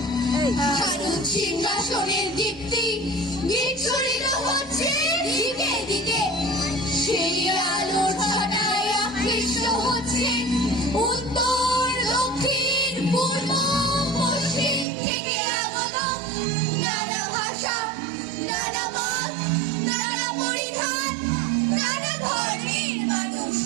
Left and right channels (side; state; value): left; drops out; at 14.9 s